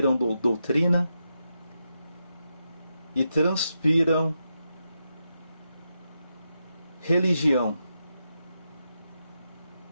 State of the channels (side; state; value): both; inverted; correlation -0.86